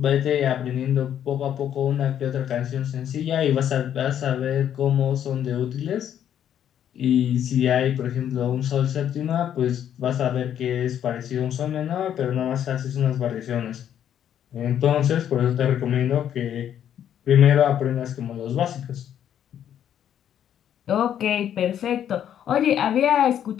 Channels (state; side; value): quieter; right; 9.9 dB